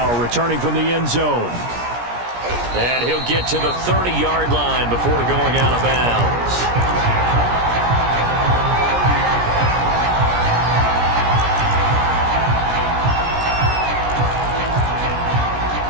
returning from the end zone. And he'll get to the 30-yard line before going out of bounds.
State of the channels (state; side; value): late; left; 17 ms